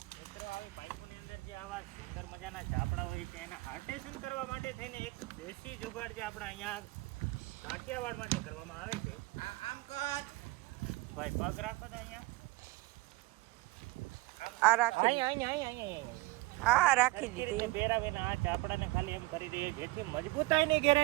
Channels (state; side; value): quieter; left; 21.9 dB